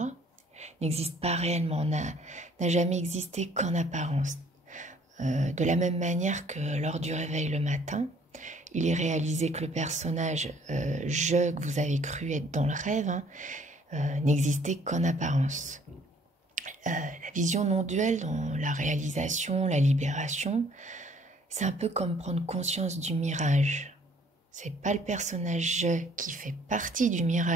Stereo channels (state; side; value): normal; both; correlation 0.59